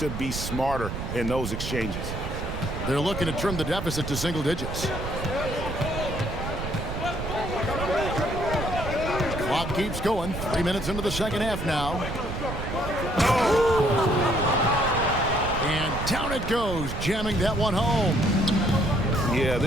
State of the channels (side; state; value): right; noise; rumble, 6 dB below the sound